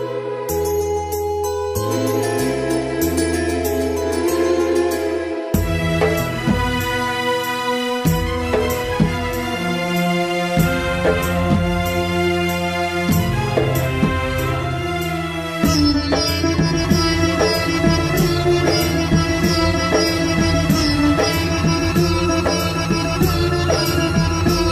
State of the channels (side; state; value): both; identical; correlation 1.00